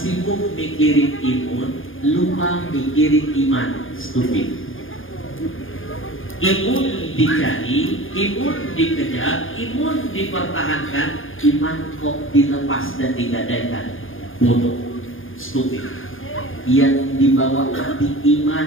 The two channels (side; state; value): right; late; 0.59 ms